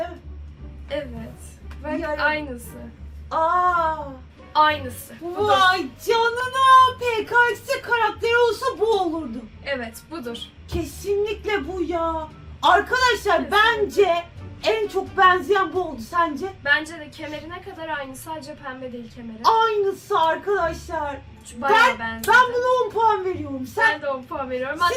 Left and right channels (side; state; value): both; identical; correlation 1.00